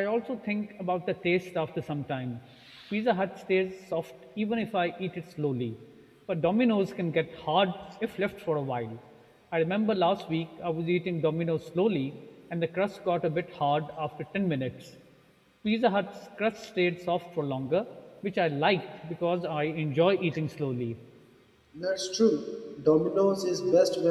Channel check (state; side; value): identical; both; correlation 1.00